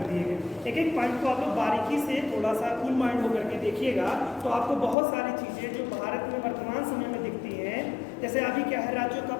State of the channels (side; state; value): right; drops out; at 5.0 s